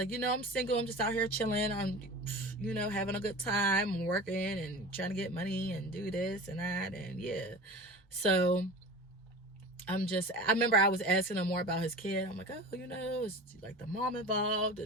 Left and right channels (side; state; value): both; normal; correlation 0.34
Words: I'm single. I'm just out here chilling. I'm, having a good time. I'm working and trying to get money and do this and that, and yeah. So I remember I was asking him more about his kid. I'm like, oh, is like the mom involved